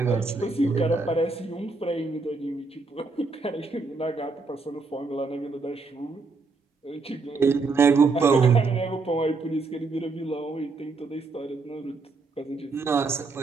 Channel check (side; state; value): left; quieter; 4.0 dB